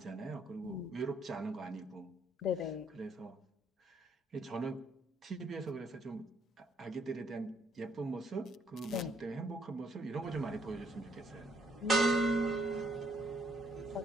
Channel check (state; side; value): normal; both; correlation 0.69